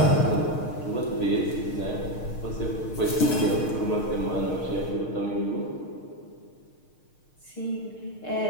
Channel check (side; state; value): right; late; 6.5 ms